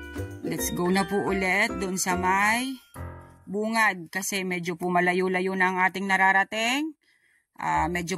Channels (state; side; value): identical; both; correlation 1.00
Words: Let's go na po ulit doon sa may bungad kasi medyo po malayo-layo na ang ating nararating. Medyo